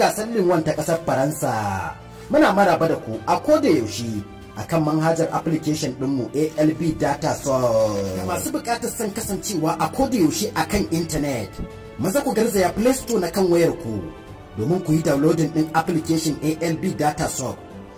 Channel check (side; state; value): both; identical; correlation 1.00